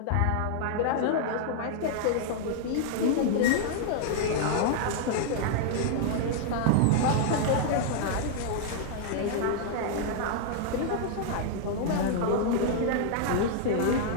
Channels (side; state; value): both; different; correlation -0.01